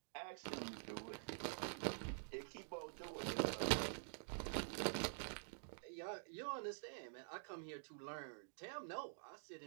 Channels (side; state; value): left; silent; digital silence